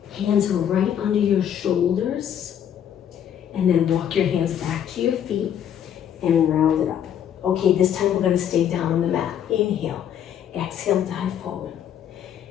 Hands are right under your shoulders. And then walk your hands back to your feet and round it up. Okay, this time we're going to stay down on the mat. Inhale, exhale, dive forward.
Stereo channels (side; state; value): right; quieter; 9.5 dB